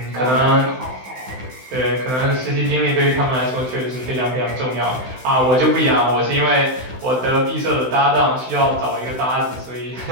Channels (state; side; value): late; left; 16 ms